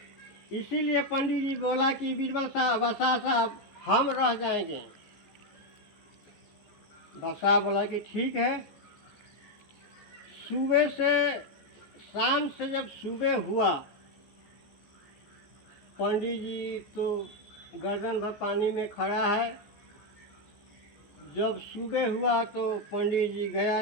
इसीलिए पंडित जी बोला कि बीरबल साहब, बसा साहब हम रह जाएंगे। बसा बोला कि ठीक है। सुबह से शाम से जब सुबह हुआ, पंडित जी तो गर्दन भर पानी में खड़ा है। जब सुबह हुआ तो पंडित जी गया,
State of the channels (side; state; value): right; late; 14 ms